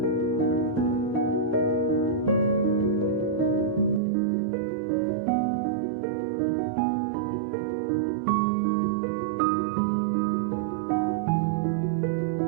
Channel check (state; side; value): drops out; left; at 4.0 s